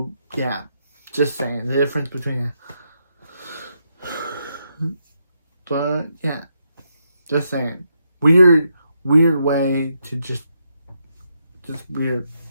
yeah. Just saying. The difference between it. But, yeah. Just saying. Weird way to just weird.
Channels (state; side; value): inverted; both; correlation -0.80